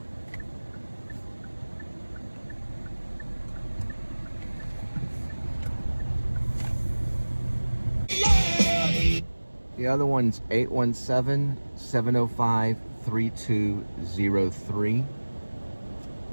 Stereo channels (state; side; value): inverted; both; correlation -1.00